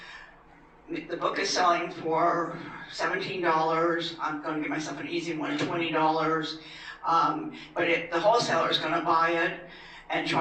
the book is selling for $17. I'm going to give myself an easy one, $20. But the wholesaler is going to buy it and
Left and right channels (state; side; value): identical; both; correlation 1.00